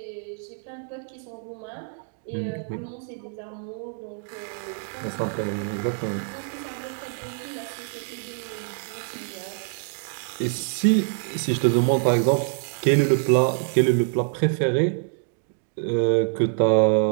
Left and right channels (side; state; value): left; silent; 61 dB below the other